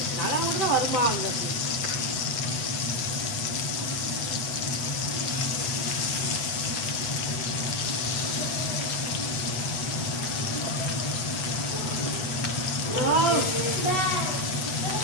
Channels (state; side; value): late; right; 8.1 ms